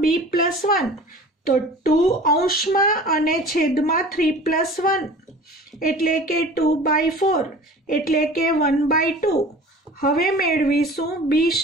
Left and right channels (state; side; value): normal; both; correlation 0.42